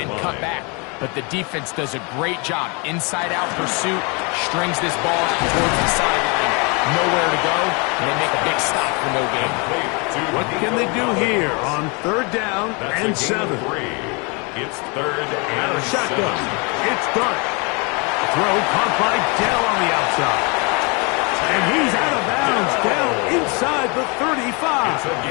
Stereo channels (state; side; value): quieter; right; 31.2 dB